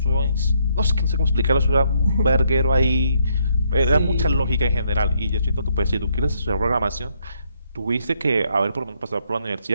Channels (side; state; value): both; inverted; correlation -0.72